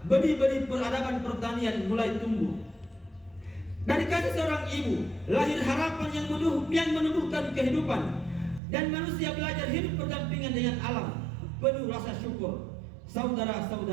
benih-benih peradaban pertanian mulai tumbuh. Dari kasih seorang ibu, lahir harapan yang menumbuhkan kehidupan. Dan manusia belajar hidup berdampingan dengan alam, penuh rasa syukur.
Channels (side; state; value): left; drops out; at 8.6 s